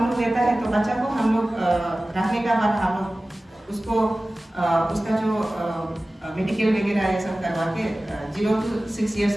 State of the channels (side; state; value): both; normal; correlation 0.97